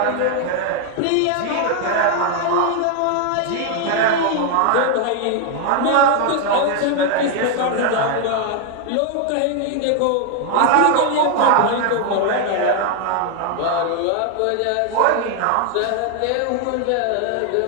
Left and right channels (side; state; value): both; different; correlation 0.00